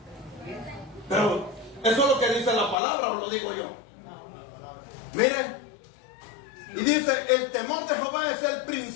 Pero eso es lo que dice la palabra, o lo digo yo. Miren, y dice: el temor de Jehová es el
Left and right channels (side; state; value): right; drops out; at 2.8 s